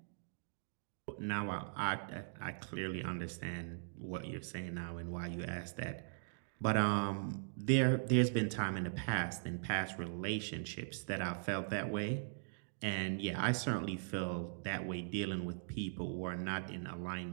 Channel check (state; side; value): silent; left; digital silence